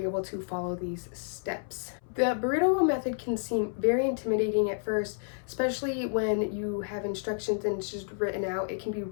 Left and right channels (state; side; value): silent; right; 58 dB below the other